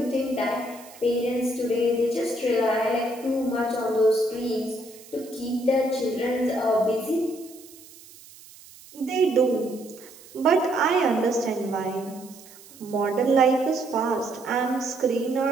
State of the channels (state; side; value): noise; right; hiss, 21 dB below the sound